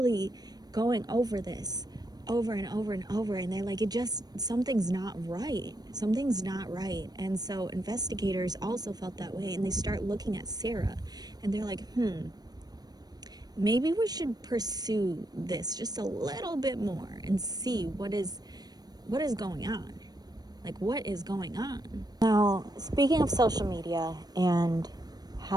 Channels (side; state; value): left; late; 0.19 ms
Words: going over this over and over and over, and they're like, something's not right. Something's not right. And so investigators also felt that way, and they start looking at Sarah, and they're like, maybe we should pursue this just a little bit more and see what is going on. Like, what is going on? Now, speaking of social media and